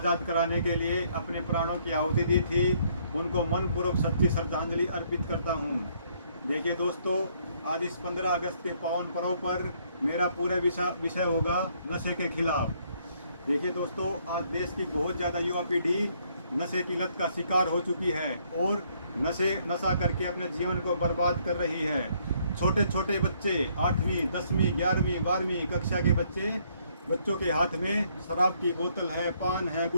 कराने के लिए अपने प्राणों की आहुति दी थी, उनको मनपूर्वक सच्ची श्रद्धांजलि अर्पित करता हूं। देखिए दोस्तों, आज इस 15 अगस्त के पावन पर्व पर मेरा पूरा विषय होगा नशे के खिलाफ। देखिए दोस्तों, आज देश की बहुत ज़्यादा युवा पीढ़ी नशे की लत का शिकार हो चुकी है और नशा करके अपने जीवन को बर्बाद कर रही है। छोटे छोटे बच्चे 8वीं 10वीं 11वीं 12वीं कक्षा के बच्चों के हाथ में शराब की बोतल है, पान है,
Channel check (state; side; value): inverted; both; correlation -0.68